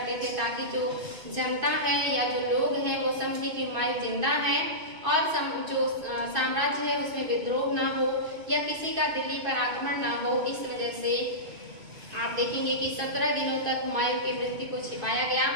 थे ताकि जो जनता है या जो लोग हैं वो समझे कि हुमायूं जिंदा है और जो साम्राज्य है उसमें विद्रोह ना हो या किसी का दिल्ली पर आक्रमण ना हो। इस वजह से आप देखेंगे कि 17 दिनों तक हुमायूं की मृत्यु को छिपाया गया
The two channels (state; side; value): late; left; 2.5 ms